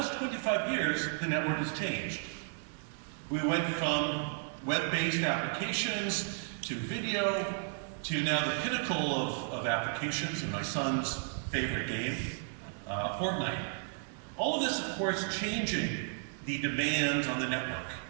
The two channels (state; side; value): silent; left; 55 dB below the other